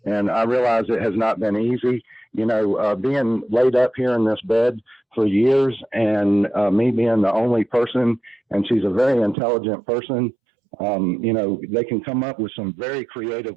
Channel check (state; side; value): drops out; left; at 9.3 s